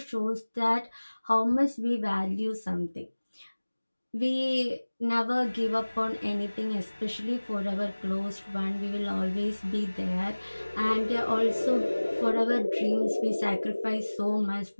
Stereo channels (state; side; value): inverted; both; correlation -1.00